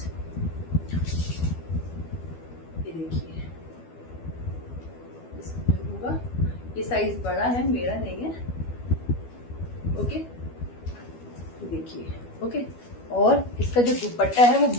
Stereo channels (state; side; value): late; right; 12 ms